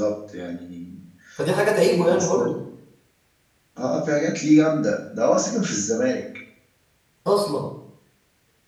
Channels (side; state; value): both; identical; correlation 1.00